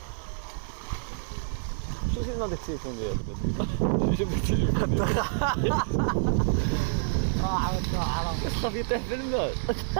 شو جبنا هذاك التليفون ديالك؟ شو جبنا التليفون ديالك؟ صافي يطيح في الماء.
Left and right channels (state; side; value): silent; left; 59 dB below the other